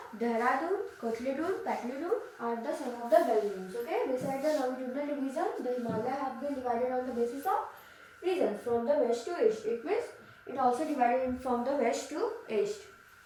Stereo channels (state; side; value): identical; both; correlation 1.00